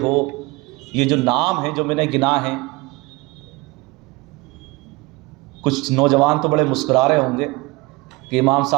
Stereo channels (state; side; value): quieter; left; 23.3 dB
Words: ہو، یہ جو نام ہیں جو میں نے گنا ہیں، کچھ نوجوان تو بڑے مسکرا رہے ہوں گے کہ امام